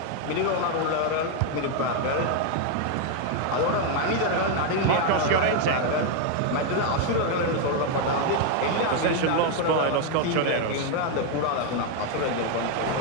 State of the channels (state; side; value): different; both; correlation 0.01